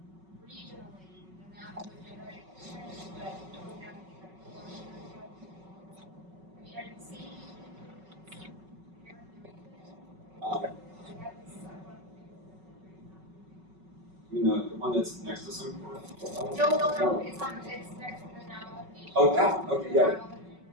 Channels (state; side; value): late; left; 5.3 ms